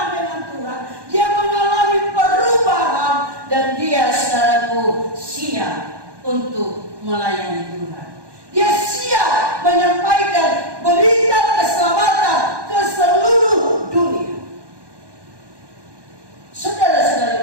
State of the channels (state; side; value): late; left; 1.2 ms